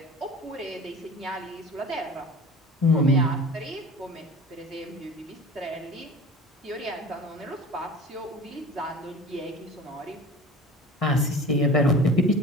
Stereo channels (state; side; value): normal; both; correlation 0.39